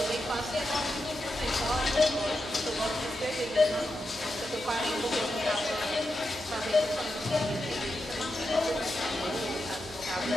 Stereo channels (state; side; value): normal; both; correlation 0.87